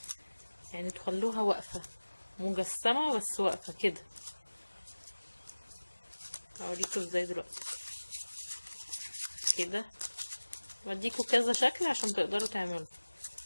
تخلوها واقفه مجسمه بس واقفه كده. هوريكم ازاي دلوقتي كده، بديكوا كذا شكل عشان تقدروا تعملوا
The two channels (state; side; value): inverted; both; correlation -1.00